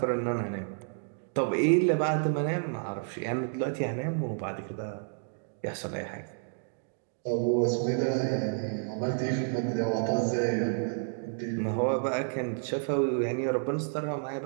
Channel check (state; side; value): silent; left; digital silence